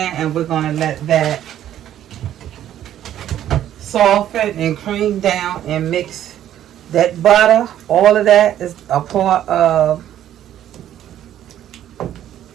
and we're going to let that soften and cream down and mix that butter. All of that is a part of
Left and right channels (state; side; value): quieter; left; 11.5 dB